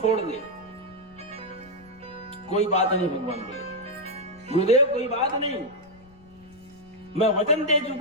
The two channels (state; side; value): noise; left; rumble, 25 dB below the sound